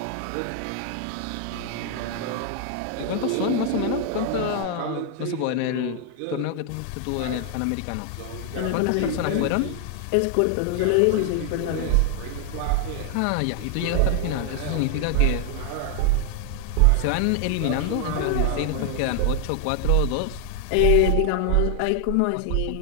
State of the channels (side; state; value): both; different; correlation 0.00